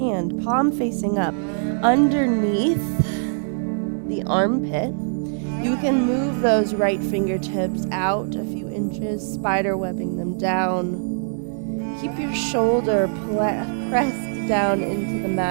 palm facing up, underneath the armpit. You can move those right fingertips out a few inches, spider webbing them down. Keep your shoulder pressed down into the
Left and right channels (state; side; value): silent; left; digital silence